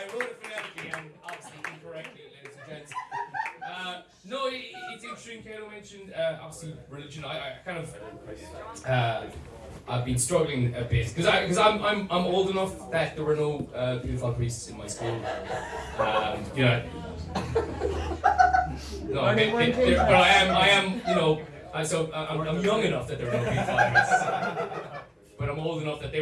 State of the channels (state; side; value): identical; both; correlation 1.00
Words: wrote it phonetically and obviously incorrectly, ladies and gents. No, it's interesting. Kato mentioned obviously religion. I kind of I've been struggling a bit because I'm old enough that there were no beautiful priests in my school. You know. No, but I am, you know. I'm young enough that there were no beautiful priests, but I'm old enough that they